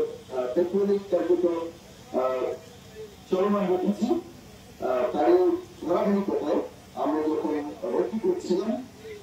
টেকনিক কার্যক্রম চলমান রেখেছি। তারই ধারাবাহিকতায় আমরা যখন ভর্তি করছিলাম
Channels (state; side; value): identical; both; correlation 1.00